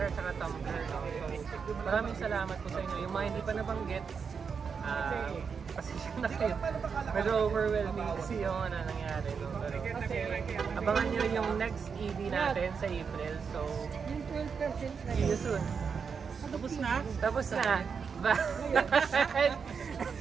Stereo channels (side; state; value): left; quieter; 6.0 dB